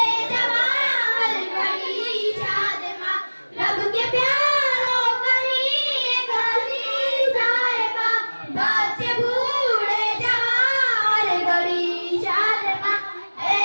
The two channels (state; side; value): inverted; both; correlation -1.00